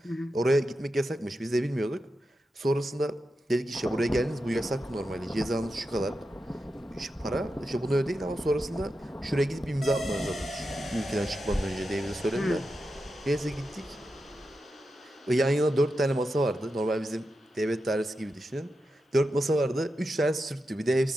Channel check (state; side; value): normal; both; correlation 0.89